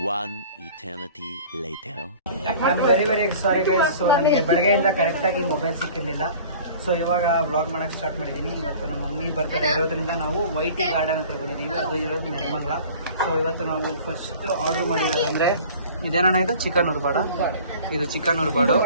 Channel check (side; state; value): both; inverted; correlation -0.44